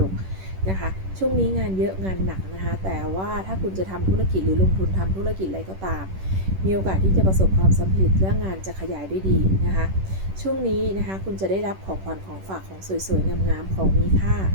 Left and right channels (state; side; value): late; left; 10 ms